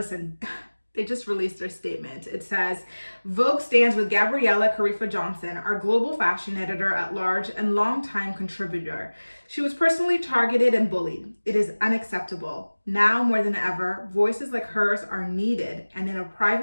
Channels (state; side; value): inverted; both; correlation -1.00